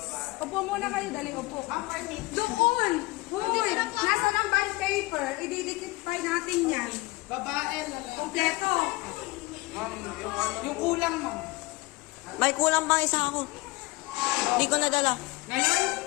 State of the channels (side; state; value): right; quieter; 22.4 dB